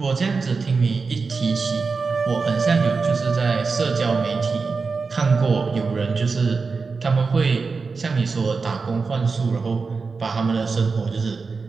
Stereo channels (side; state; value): left; quieter; 4.6 dB